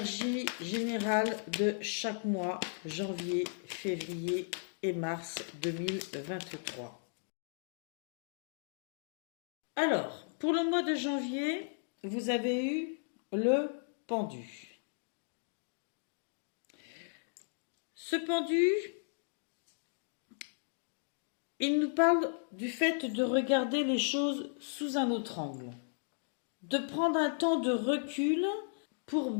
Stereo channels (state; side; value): silent; right; digital silence